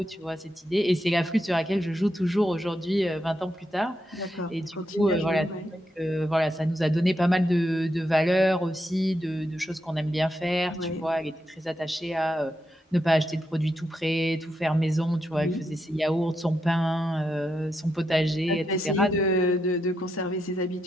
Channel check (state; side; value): normal; both; correlation 0.83